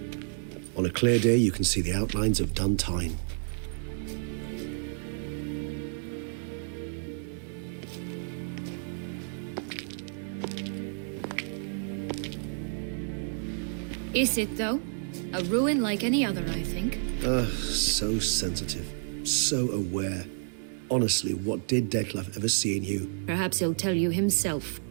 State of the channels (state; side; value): silent; left; digital silence